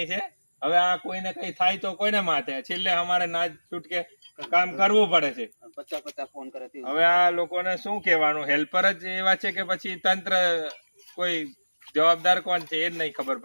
છે. હવે આ કોઈને કઈ થાય તો કોઈને માથે, છેલ્લે અમારે ના છૂટકે કામ કરવું પડે છે. 50 ફોન કરે. હવે આ લોકોને શું કહેવાનું? હેલ્પર જ એવા છે કે પછી તંત્ર કોઈ જવાબદાર કોણ છે એ જ નહીં ખબર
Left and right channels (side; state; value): both; inverted; correlation -1.00